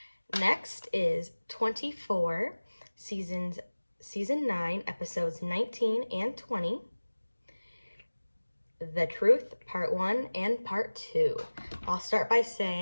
Next is 24, season 9, episodes 19 and 20. The Truth, Part 1 and Part 2. I'll start by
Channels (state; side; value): inverted; both; correlation -1.00